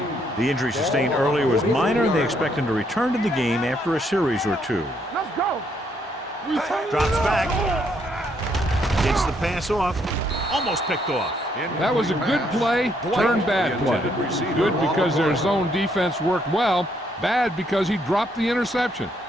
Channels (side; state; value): both; normal; correlation 0.72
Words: 3. The injury sustained earlier was minor, and they expect him to return to the game after a series or two. Let's go. Drops back. Gets the pass off. Almost picked off. That was a good play, turned bad play. Good because their zone defense worked well, bad because he dropped the interception.